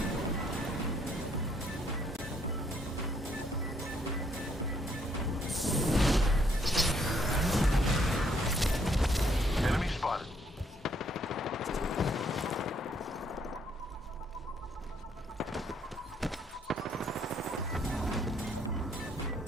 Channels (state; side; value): normal; both; correlation 0.69